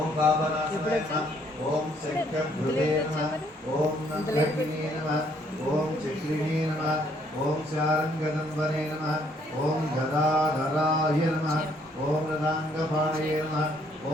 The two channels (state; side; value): normal; both; correlation 0.67